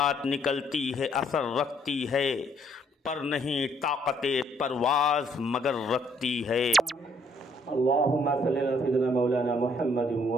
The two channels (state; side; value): normal; both; correlation 0.67